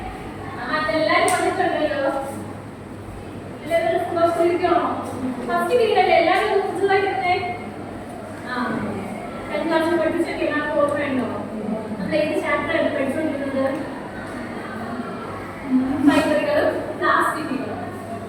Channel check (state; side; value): identical; both; correlation 1.00